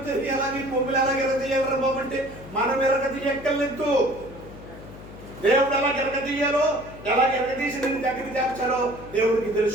ఎలాగే కొమ్ములు ఎలాగ ఎరగదీయాలరా బాబు అంటే మనం ఎరగదీయక్కర్లేదు. దేవుడు ఎలా ఎరగదీయాలో, ఎలా ఎరగదీసి నేను దగ్గరికి చేర్చాలో దేవుడికి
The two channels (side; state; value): left; noise; hum, 16 dB below the sound